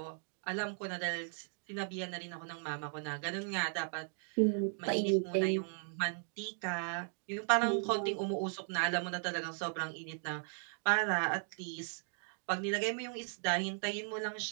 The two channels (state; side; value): silent; left; 53 dB below the other